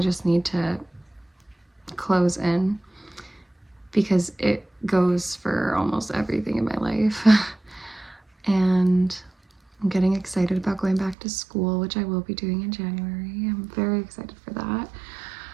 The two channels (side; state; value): left; drops out; at 11.2 s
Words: need to close in, because it goes for almost everything in my life. And I'm getting excited about going back to school, which I will be doing in January. I'm very excited for that.